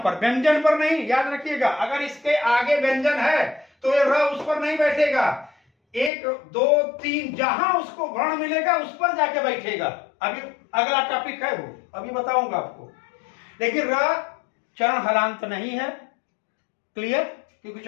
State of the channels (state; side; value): drops out; right; at 6.1 s